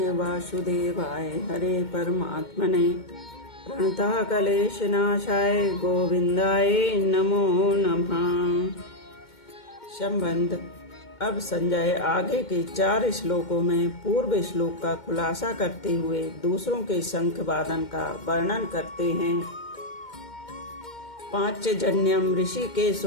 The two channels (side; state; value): right; late; 2.2 ms